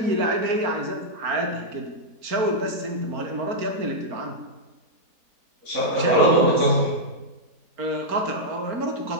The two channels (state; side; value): late; left; 4.4 ms